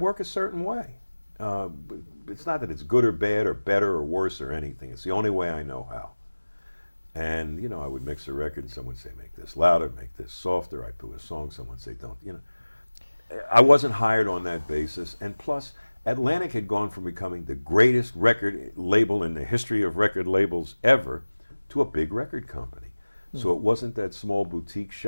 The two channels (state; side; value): inverted; both; correlation -1.00